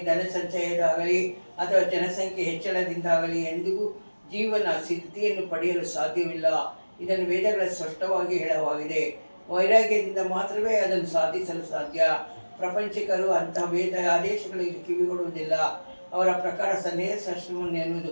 ಧನ ಸಂಚಯದಾಗಲಿ ಅಥವಾ ಜನಸಂಖ್ಯೆ ಹೆಚ್ಚಳದಿಂದಾಗಲಿ ಎಂದಿಗೂ ಜೀವನ ಸ್ಥಿತಿಯನ್ನು ಪಡೆಯಲು ಸಾಧ್ಯವಿಲ್ಲ. ಇದನ್ನು ವೇದಗಳ ಸ್ಪಷ್ಟವಾಗಿ ಹೇಳಲಾಗಿದೆ. ವೈರಾಗ್ಯದಿಂದ ಮಾತ್ರವೇ ಅದನ್ನು ಸಾಧಿಸಲು ಸಾಧ್ಯ. ಪ್ರಪಂಚಿಕರು ಅಂತಹ ವೇದ ಆದೇಶಗಳಿಗೆ ಕಿವಿಗೊಡುವುದಿಲ್ಲ. ಅವರ ಪ್ರಕಾರ ಸನ್ಯಾಸಾಶ್ರಮವನ್ನು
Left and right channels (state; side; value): inverted; both; correlation -1.00